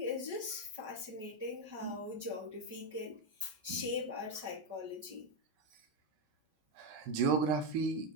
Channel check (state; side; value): late; left; 5.2 ms